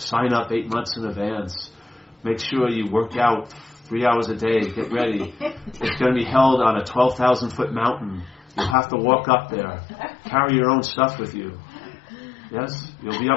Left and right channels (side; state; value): right; drops out; at 8.8 s